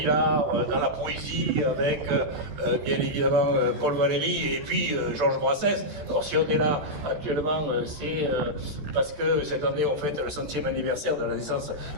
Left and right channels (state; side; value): late; left; 14 ms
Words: dans la poésie avec bien évidemment Paul Valéry et puis Georges Brassens. Alors si on est là actuellement, c'est parce que cette année on fête le 100e anniversaire de la naissance